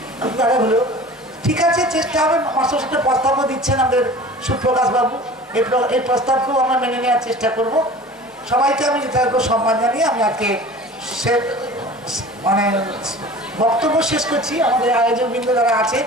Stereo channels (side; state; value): both; normal; correlation 0.41